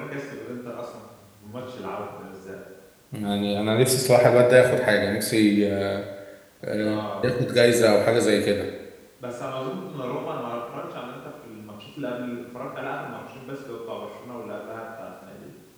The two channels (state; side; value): identical; both; correlation 1.00